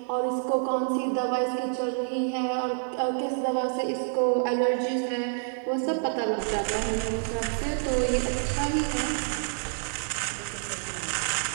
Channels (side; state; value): left; silent; 59 dB below the other